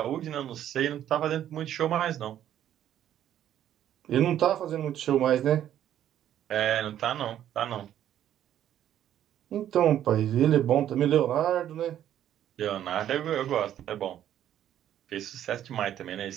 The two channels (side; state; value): left; quieter; 11.1 dB